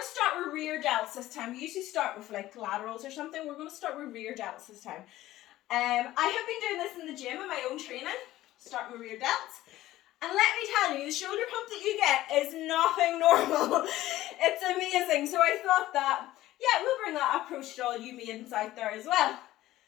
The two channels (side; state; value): right; quieter; 15.4 dB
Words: start with rear delts this time. We usually start with like laterals or something. We're going to start with rear delts this time. I have been doing this in the gym in my own training, starting with rear delts. And let me tell you, the shoulder pump that you get is nothing normal. It's amazing. So I thought that, yeah, we'll bring that approach to all you maidens out there as well.